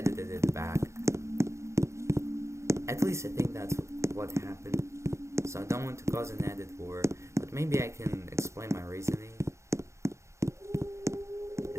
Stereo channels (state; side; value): late; left; 0.14 ms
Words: it back. At least I think that's what happened. So I don't want to cause an edit war, but maybe I can explain my reasoning.